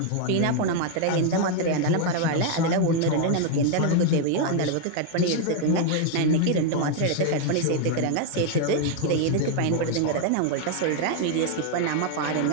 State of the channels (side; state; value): both; different; correlation 0.00